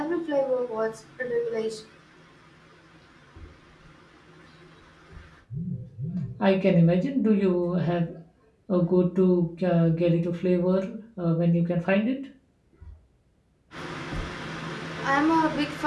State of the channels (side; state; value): both; identical; correlation 1.00